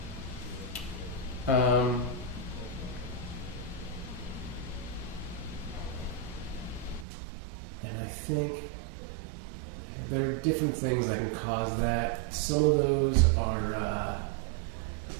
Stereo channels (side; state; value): left; drops out; at 7.1 s